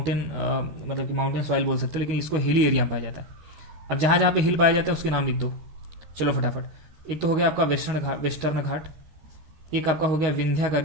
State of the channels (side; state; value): left; late; 12 ms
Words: मतलब कि माउंटेन सॉइल बोल सकते हो, लेकिन इसको हिली एरिया में पाया जाता है। अब जहाँ जहाँ पे हिल पाया जाता है उसके नाम लिख दो, चलो फटाफट। एक तो हो गया आपका वेस्टर्न घाट, एक आपका हो गया